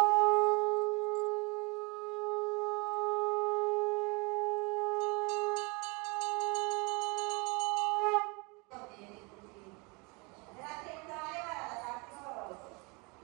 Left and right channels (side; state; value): left; quieter; 29.2 dB